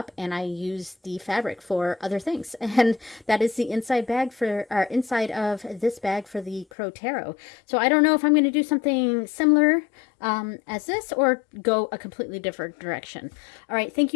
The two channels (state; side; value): drops out; right; at 6.7 s